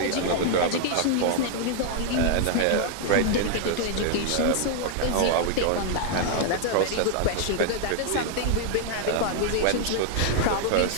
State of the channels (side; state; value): both; different; correlation 0.00